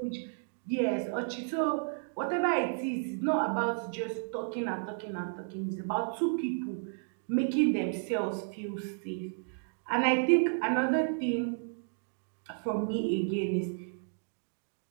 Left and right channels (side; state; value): left; silent; digital silence